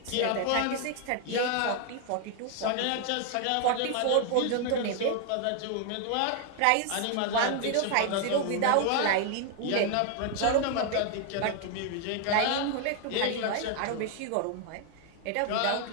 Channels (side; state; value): both; different; correlation 0.00